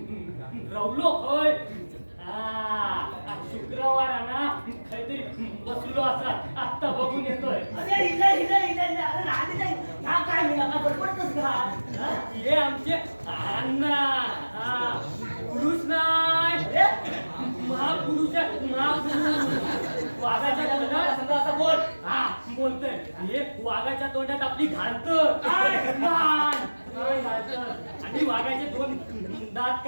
रवलो होय. शुक्रवार ना काहीतरी बसलो असा आत्ता बघून येतोय. हे आमचे अण्णा पुरुष नाही महापुरुष वाघाच्या तोंडात असं बोल. बोलतोय हे वाघाच्या तोंडात आपली घालतं आणि वाघाचे 2 दात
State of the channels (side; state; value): both; inverted; correlation -1.00